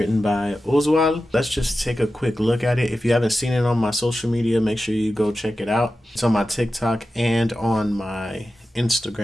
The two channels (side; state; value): both; normal; correlation 0.93